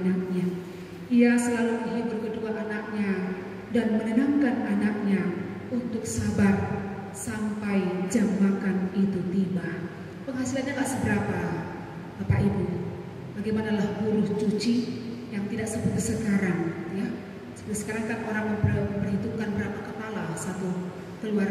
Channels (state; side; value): identical; both; correlation 1.00